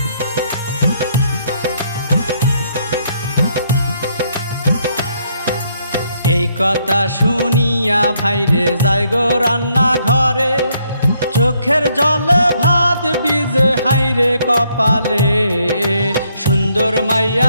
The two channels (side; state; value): both; inverted; correlation -0.71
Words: এই কথা শুনিয়া ভাইরে যাই গো রান্না ঘরে, চোখের জলে ভাত ভিজে হাইরে কপালে, সুন্দর